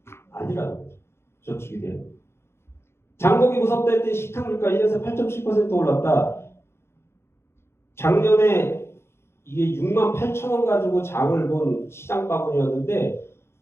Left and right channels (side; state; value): right; late; 0.12 ms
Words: 아니라는 거죠. 저축이 대안. 장보기 무섭다 할 때 식탁 물가 1년새 8.7% 올랐다. 작년에 이게 6만 8천 원 가지고 장을 본 시장 바구니였는데